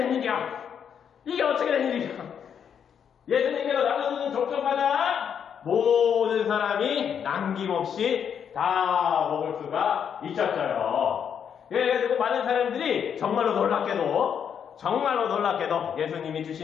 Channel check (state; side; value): quieter; right; 7.9 dB